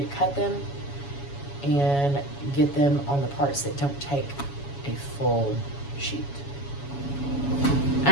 to cut them and get them on the parts that don't take a full sheet.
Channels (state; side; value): late; right; 7.2 ms